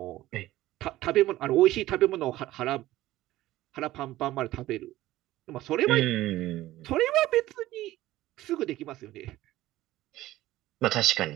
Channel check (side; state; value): left; quieter; 16.0 dB